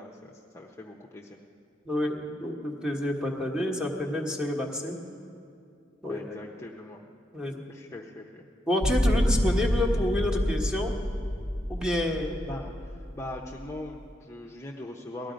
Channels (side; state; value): both; normal; correlation 0.82